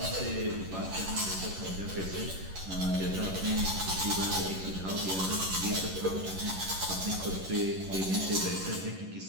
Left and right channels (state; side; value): late; left; 11 ms